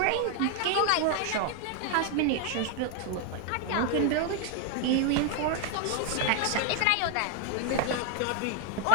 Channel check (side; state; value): both; different; correlation 0.00